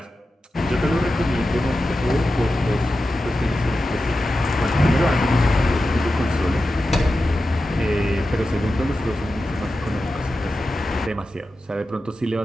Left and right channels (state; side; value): normal; both; correlation 0.92